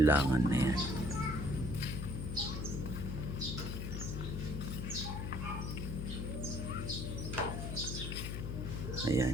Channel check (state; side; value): noise; left; hum, 3 dB below the sound